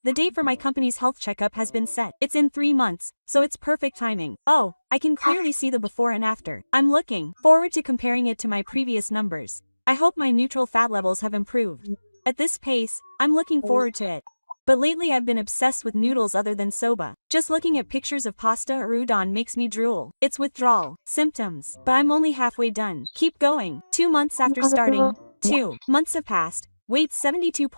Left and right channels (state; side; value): inverted; both; correlation -1.00